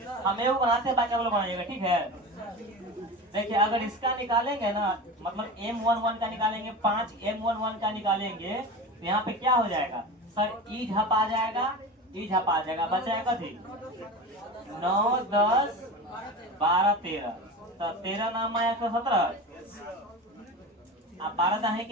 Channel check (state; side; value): normal; both; correlation 0.29